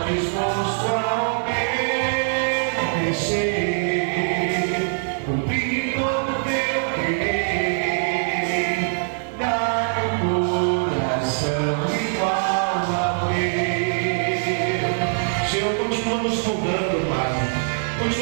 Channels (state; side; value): silent; left; digital silence